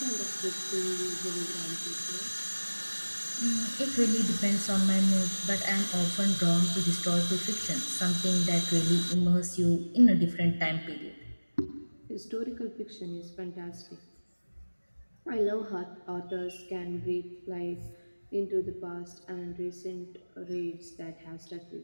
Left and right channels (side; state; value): both; inverted; correlation -1.00